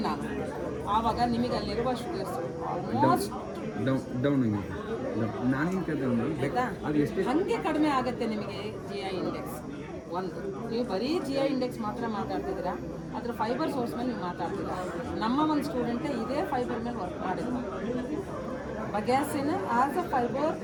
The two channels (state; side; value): identical; both; correlation 1.00